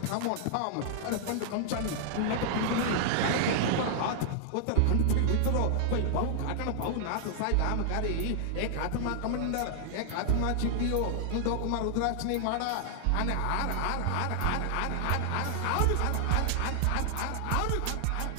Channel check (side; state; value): both; different; correlation -0.01